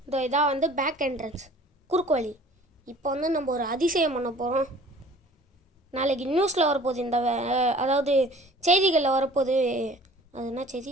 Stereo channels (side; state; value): both; normal; correlation 0.49